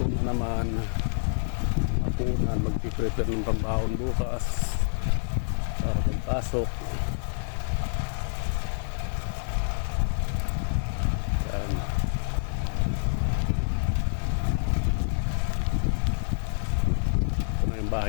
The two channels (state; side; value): silent; right; digital silence